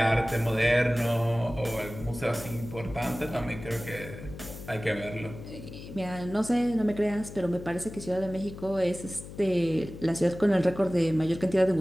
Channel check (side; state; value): left; noise; hum, 13 dB below the sound